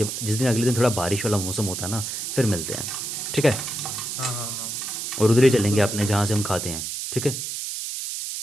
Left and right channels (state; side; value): noise; right; hiss, 5 dB below the sound